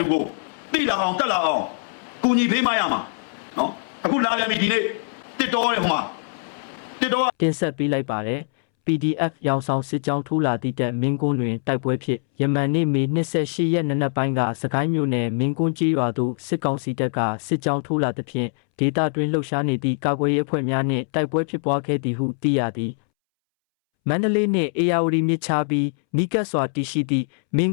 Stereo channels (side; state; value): right; silent; 64 dB below the other